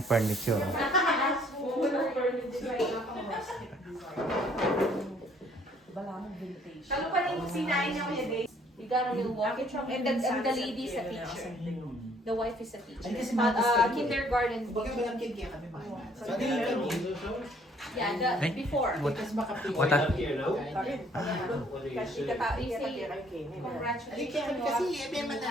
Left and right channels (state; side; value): normal; both; correlation 0.61